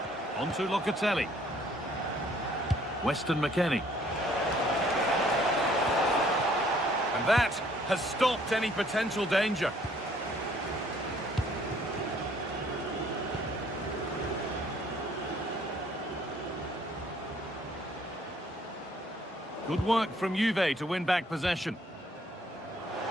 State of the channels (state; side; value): normal; both; correlation 0.61